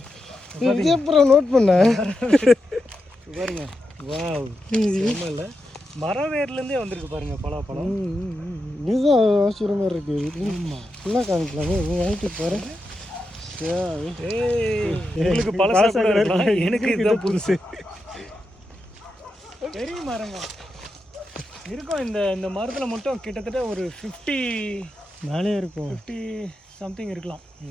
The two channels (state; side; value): normal; both; correlation 0.87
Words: நோட் பண்ண பாருங்க. வாவ், இல்லை மரம் வேர்லேருந்தே வந்திருக்கு பாருங்க பலாப்பழம். இதுதான் ஆச்சரியமா இருக்கு. ஃபுல்லாக காமிக்கலாமே, வாங்கிட்டு பாருங்க. உங்களுக்கு பழசா இருக்கலாம், எனக்கு இதுதான் புதுசு. பெரிய மரங்க இருக்கும். இந்த மரத்தில் மட்டும் கிட்டத்தட்ட ஒரு 50 மேலே இருக்கும், 50 சம்திங் இருக்கலாம்.